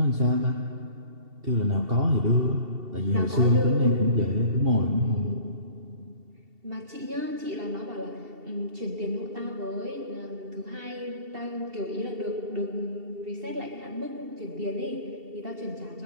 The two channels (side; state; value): left; late; 2.7 ms